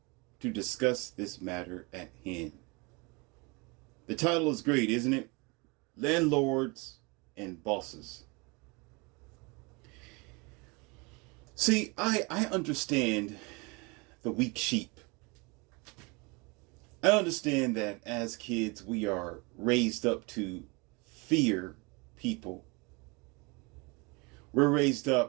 to discuss this matter at hand. The title is great, isn't it? Landlords and Bosses. See, I understand the weak sheep. I understand that as kids we are raised up to fear people. We're raised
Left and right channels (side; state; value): left; quieter; 28.4 dB